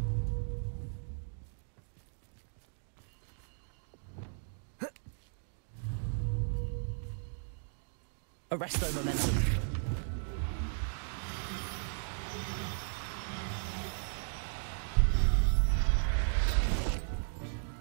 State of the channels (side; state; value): left; silent; digital silence